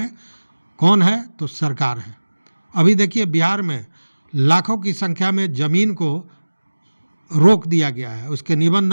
कौन है तो सरकार है। अभी देखिए बिहार में लाखों की संख्या में ज़मीन को रोक दिया गया है, उसके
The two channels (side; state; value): both; inverted; correlation -1.00